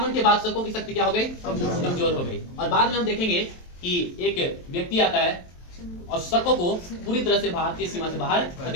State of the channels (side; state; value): right; late; 23 ms